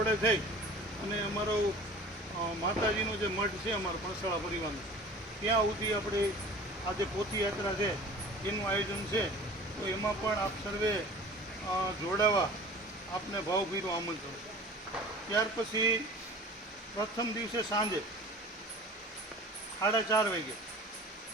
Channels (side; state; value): both; normal; correlation 0.42